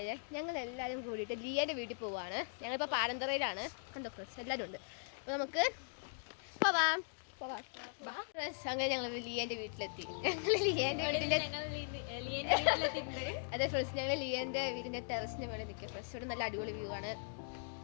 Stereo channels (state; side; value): silent; right; digital silence